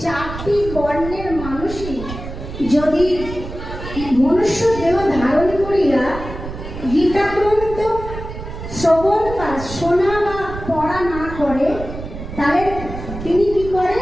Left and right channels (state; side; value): noise; right; rumble, 10 dB below the sound